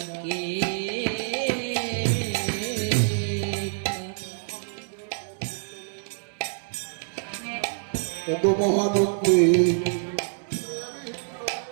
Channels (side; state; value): left; silent; digital silence